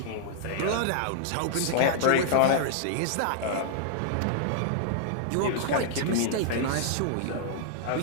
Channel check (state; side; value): different; both; correlation -0.01